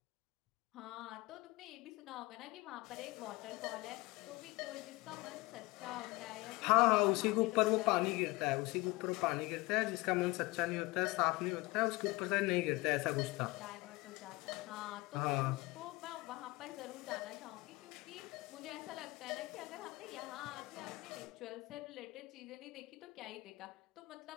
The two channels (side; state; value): right; quieter; 22.2 dB